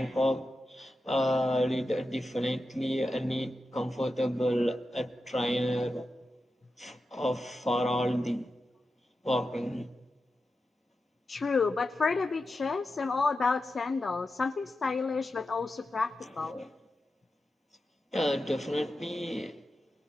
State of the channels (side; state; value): both; normal; correlation 0.90